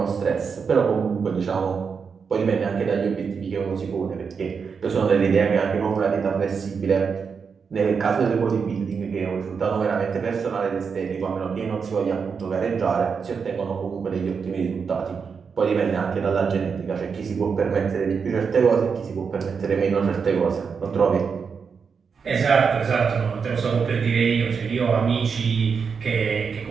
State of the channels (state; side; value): quieter; left; 5.9 dB